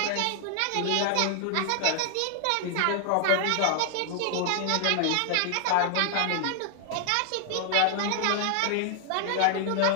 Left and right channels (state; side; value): different; both; correlation 0.00